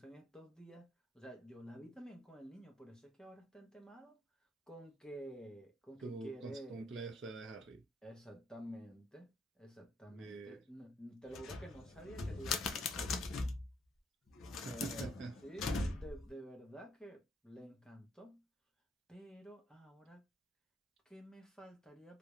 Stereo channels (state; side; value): normal; both; correlation 0.71